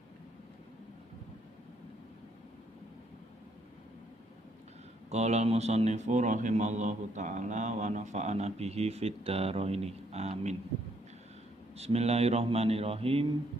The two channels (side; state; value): both; normal; correlation 0.70